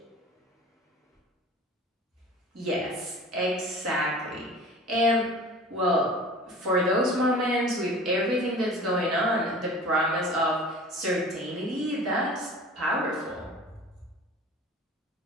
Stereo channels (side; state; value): both; normal; correlation 0.41